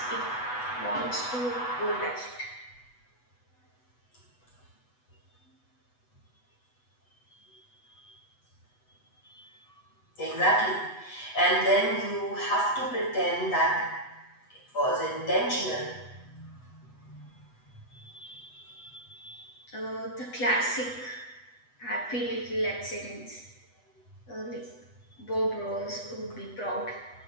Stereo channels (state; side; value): late; right; 8.1 ms